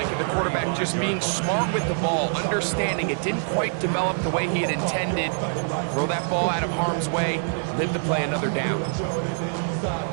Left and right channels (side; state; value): left; silent; digital silence